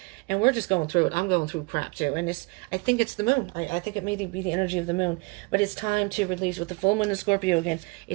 and we're just going through it. I'm going through crap too. And I think it's the moon. I think it may be the energy of the moon, but it's time to release with the full moon in Scorpio again.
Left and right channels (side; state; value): left; quieter; 27.8 dB